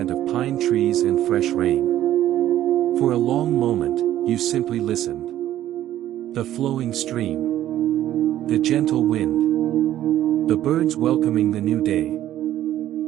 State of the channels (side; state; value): left; quieter; 12.7 dB